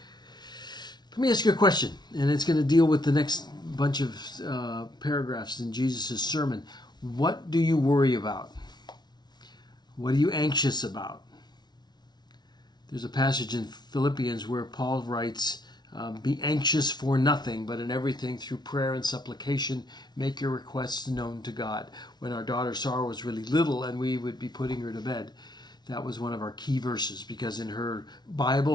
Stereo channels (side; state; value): right; late; 0.20 ms